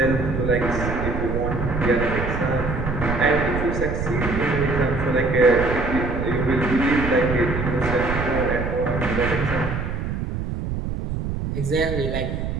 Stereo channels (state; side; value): noise; right; rumble, 3 dB below the sound